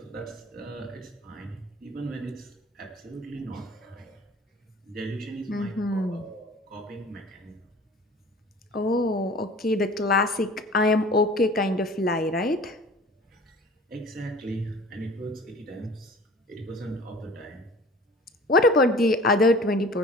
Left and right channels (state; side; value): normal; both; correlation 0.45